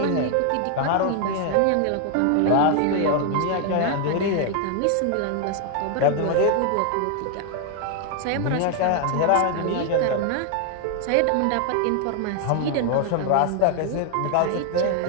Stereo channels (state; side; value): different; both; correlation 0.00